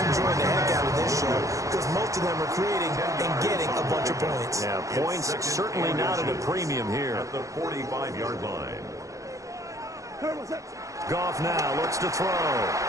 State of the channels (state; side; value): late; left; 0.16 ms